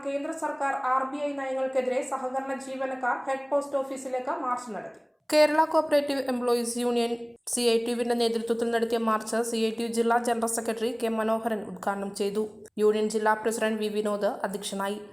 കേന്ദ്ര സർക്കാർ RBI നയങ്ങൾക്കെതിരെ സഹകരണ ജീവനക്കാർ ഹെഡ് പോസ്റ്റ് ഓഫീസിലേക്ക് മാർച്ച് നടത്തി. കേരള കോഓപ്പറേറ്റീവ് എംപ്ലോയീസ് യൂണിയൻ CITUവിന്റെ നേതൃത്വത്തിൽ നടത്തിയ മാർച്ച് CITU ജില്ലാ ജനറൽ സെക്രട്ടറി K. മനോഹരൻ ഉദ്ഘാടനം ചെയ്തു. യൂണിയൻ ജില്ലാ പ്രസിഡന്റ് V. വിനോദ് അധ്യക്ഷനായി.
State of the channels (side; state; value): both; identical; correlation 1.00